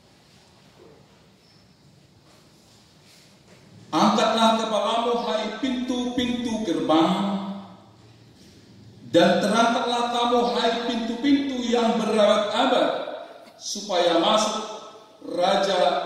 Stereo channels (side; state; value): both; identical; correlation 1.00